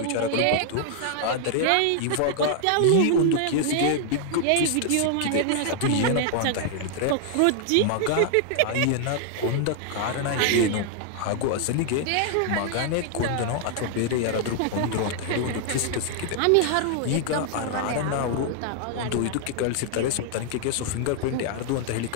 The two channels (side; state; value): both; different; correlation 0.00